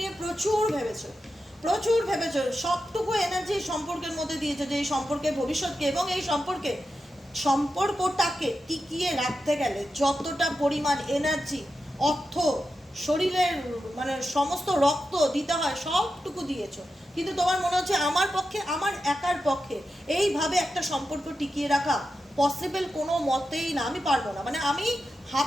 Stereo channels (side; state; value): both; normal; correlation 0.90